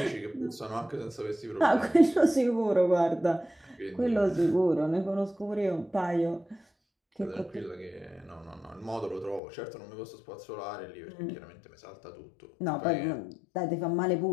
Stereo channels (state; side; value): drops out; right; at 9.4 s